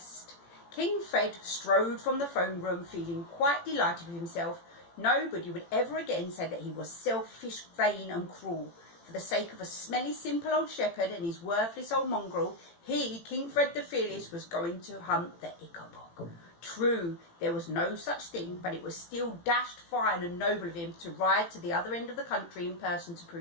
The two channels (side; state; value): right; late; 18 ms